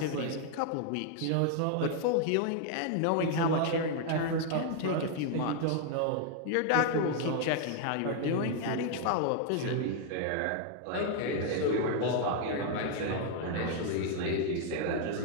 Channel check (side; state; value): both; different; correlation 0.00